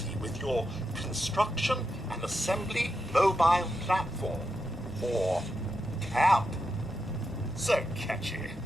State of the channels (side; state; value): both; normal; correlation 0.86